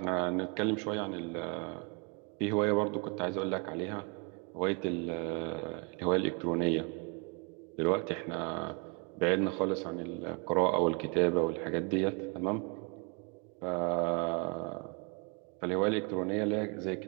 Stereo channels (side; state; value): left; quieter; 32.6 dB